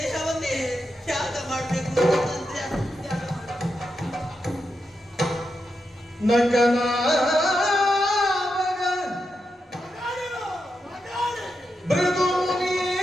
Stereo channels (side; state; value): both; normal; correlation 0.86